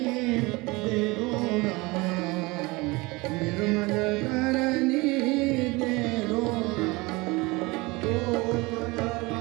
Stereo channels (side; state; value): left; quieter; 24.0 dB